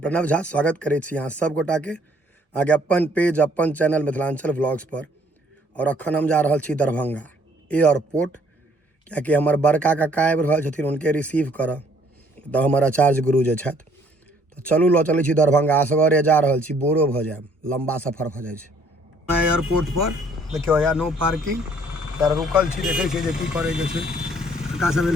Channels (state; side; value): normal; both; correlation 0.62